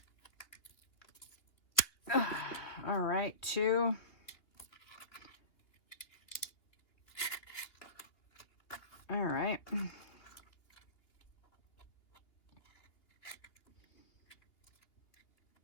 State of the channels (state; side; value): late; right; 2.6 ms